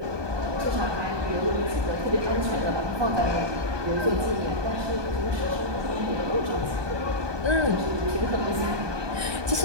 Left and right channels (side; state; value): left; late; 1.2 ms